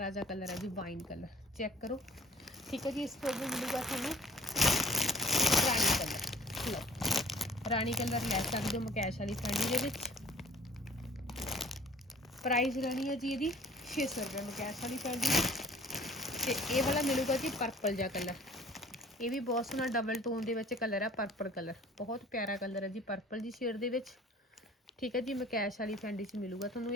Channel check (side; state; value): both; normal; correlation 0.52